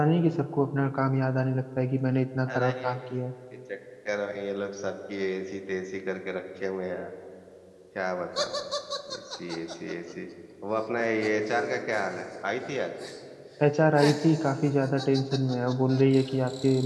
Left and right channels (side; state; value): both; identical; correlation 1.00